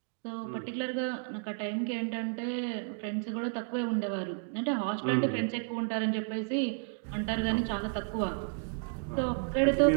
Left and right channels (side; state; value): left; silent; 56 dB below the other